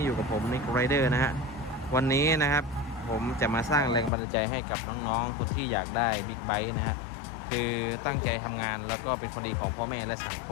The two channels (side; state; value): right; drops out; at 4.1 s